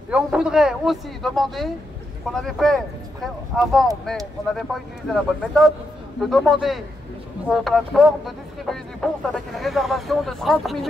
Et on voudrait aussi demander, qu'on avait fait avant, mais on n'avait pas utilisé la bonne méthode, de demander aux plateformes de distribuer des bourses avec une réservation de 30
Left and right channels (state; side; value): normal; both; correlation 0.82